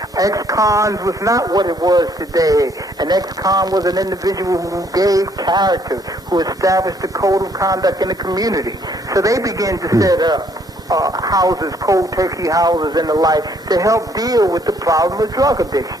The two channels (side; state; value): both; normal; correlation 0.66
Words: Ex-cons was not what it was today. An ex-con was an individual who gave character, who established a code of conduct in the community. So they began to set up houses, cold turkey houses and the like, to help deal with the problem of drug addiction.